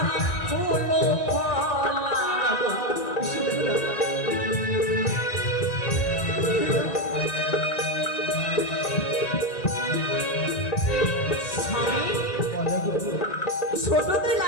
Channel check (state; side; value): late; right; 1.9 ms